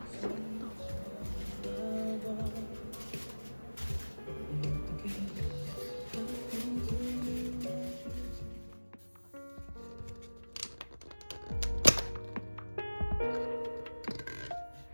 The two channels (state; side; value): inverted; both; correlation -1.00